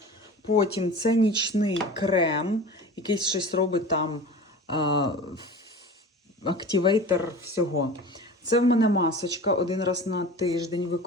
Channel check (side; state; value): both; normal; correlation 0.36